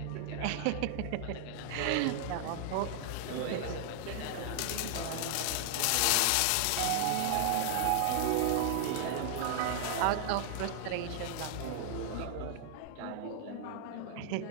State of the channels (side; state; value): both; different; correlation 0.00